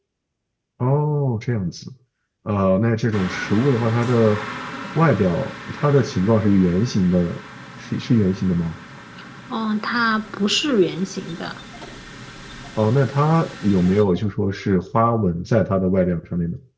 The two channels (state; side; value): identical; both; correlation 1.00